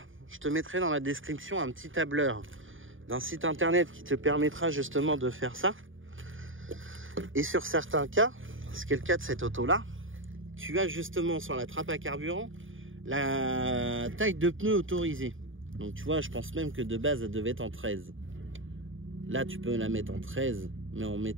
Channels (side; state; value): left; late; 0.58 ms